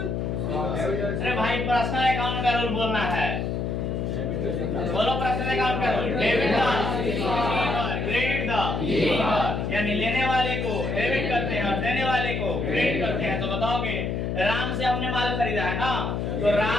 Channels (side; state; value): left; noise; hum, 1 dB below the sound